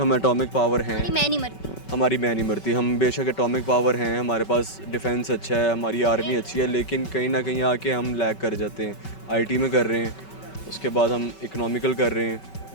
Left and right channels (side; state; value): right; late; 5.3 ms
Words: एटॉमिक पावर हैं, मैं नहीं मरती। हमारी मैं नहीं मरती, हम बेशक एटॉमिक पावर हैं, हमारे पास डिफेंस अच्छा है, हमारी आर्मी अच्छी है, लेकिन कहीं ना कहीं आके हम लैग कर जाते हैं। आईटी में कर रहे हैं, उसके बाद हम इकोनॉमिकल कर रहे हैं,